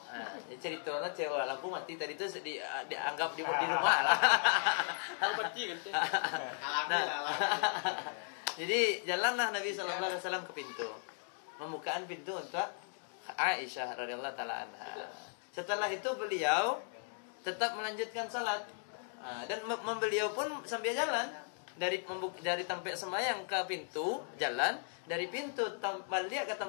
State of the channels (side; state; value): right; silent; 53 dB below the other